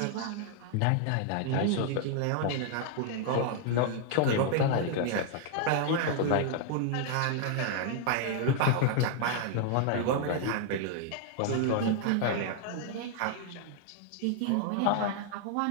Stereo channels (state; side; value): different; both; correlation 0.00